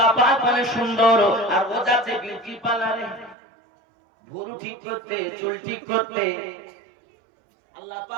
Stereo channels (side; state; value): left; drops out; at 3.4 s